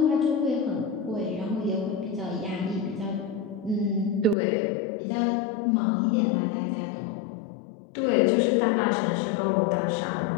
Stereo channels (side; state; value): right; drops out; at 4.4 s